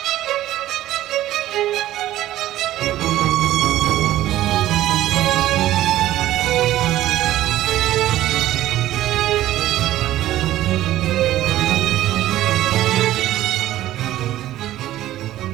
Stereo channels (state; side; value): quieter; left; 14.2 dB